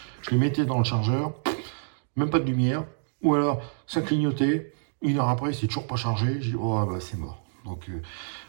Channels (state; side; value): silent; left; digital silence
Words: Je les mettais dans le chargeur, même pas de lumière, ou alors ça clignotait, 1 heure après, c'est toujours pas chargé, j'ai dit, oh bah c'est mort. Donc, vous